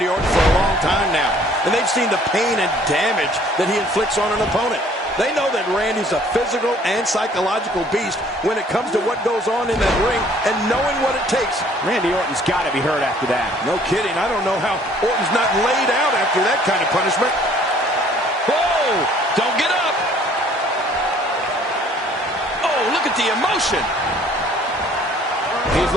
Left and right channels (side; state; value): both; normal; correlation 0.57